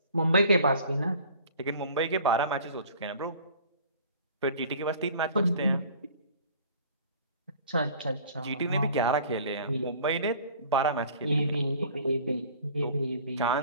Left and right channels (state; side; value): inverted; both; correlation -0.48